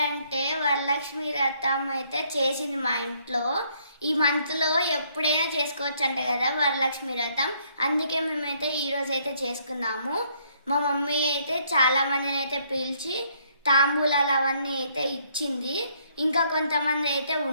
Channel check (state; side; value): inverted; both; correlation -0.68